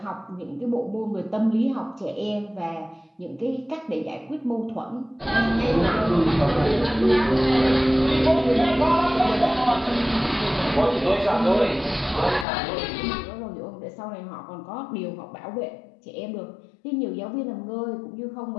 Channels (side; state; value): right; drops out; at 12.5 s